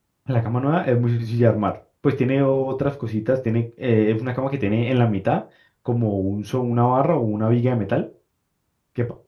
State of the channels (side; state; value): both; identical; correlation 1.00